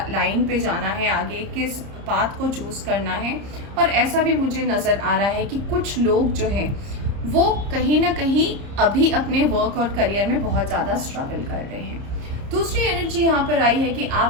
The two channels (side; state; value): left; late; 30 ms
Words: पे जाना है, आगे किस पाथ को चूज़ करना है। और ऐसा भी मुझे नज़र आ रहा है कि कुछ लोग जो हैं वो कहीं ना कहीं अभी अपने वर्क और करियर में बहुत ज़्यादा स्ट्रगल कर रहे हैं। दूसरी एनर्जी यहाँ पर आई है कि